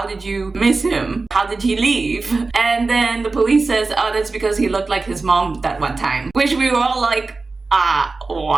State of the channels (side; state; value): left; quieter; 3.8 dB